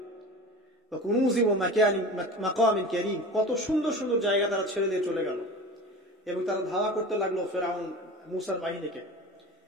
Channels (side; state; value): both; normal; correlation 0.35